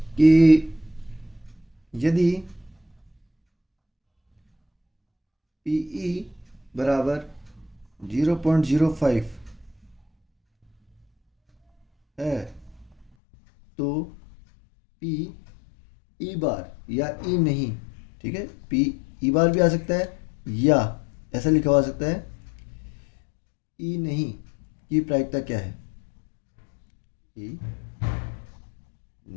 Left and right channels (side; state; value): right; drops out; at 13.1 s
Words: कि यदि पीई बराबर 0.05 है, तो पी ई बार या ई नहीं, ठीक है, पी ई बार भी आ सकता है या ऐसा लिखा हुआ आ सकता है ई नहीं की प्रायिकता क्या है? ई